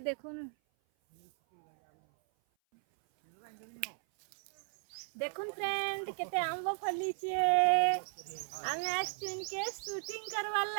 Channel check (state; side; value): silent; left; 54 dB below the other